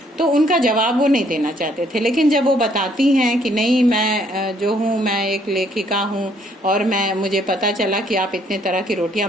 तो उनका जवाब वो नहीं देना चाहते थे। लेकिन जब वो बताती हैं कि नहीं, मैं जो हूँ मैं एक लेखिका हूँ और मुझे पता चला कि आप इतने तरह की रोटियां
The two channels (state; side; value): normal; both; correlation 0.66